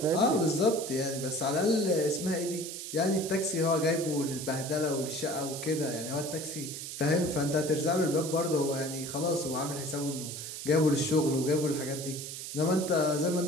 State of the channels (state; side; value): noise; right; hiss, 8 dB below the sound